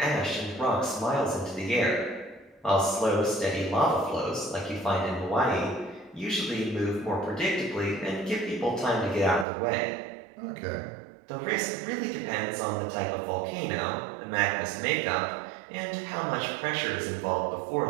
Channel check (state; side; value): drops out; left; at 9.5 s